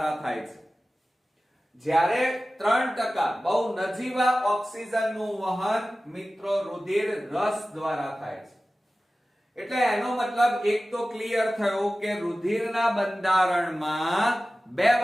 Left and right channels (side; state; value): both; normal; correlation 0.96